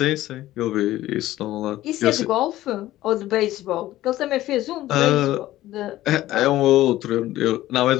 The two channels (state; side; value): quieter; right; 15.2 dB